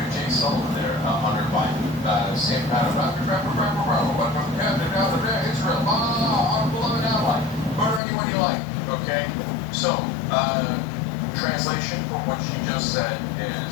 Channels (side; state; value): right; drops out; at 8.0 s